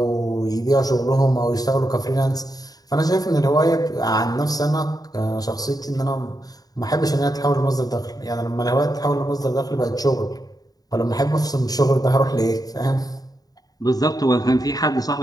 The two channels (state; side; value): late; right; 0.18 ms